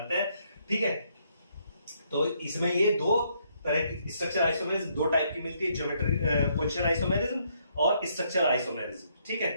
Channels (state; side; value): inverted; both; correlation -0.72